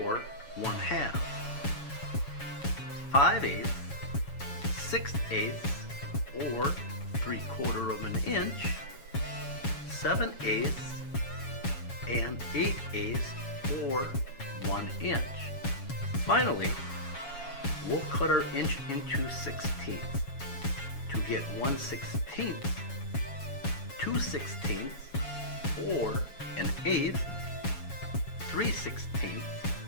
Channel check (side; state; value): right; late; 7.2 ms